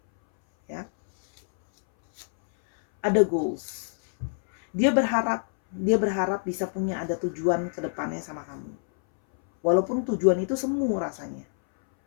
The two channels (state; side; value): silent; right; 61 dB below the other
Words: Ya. Ada goals. Dia berharap bisa punya ada tujuan ke depannya sama kamu. Walaupun tujuan itu semu rasanya.